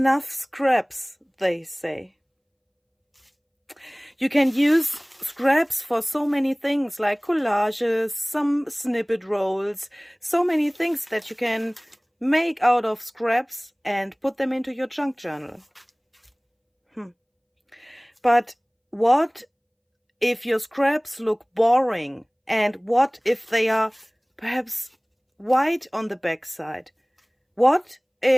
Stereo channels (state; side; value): identical; both; correlation 1.00